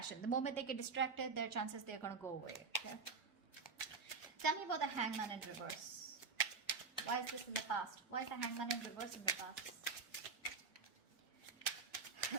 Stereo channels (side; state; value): left; quieter; 4.9 dB